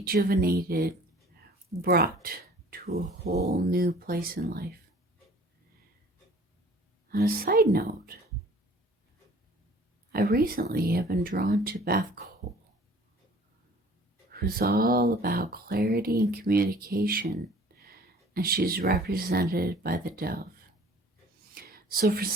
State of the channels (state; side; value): normal; both; correlation 0.50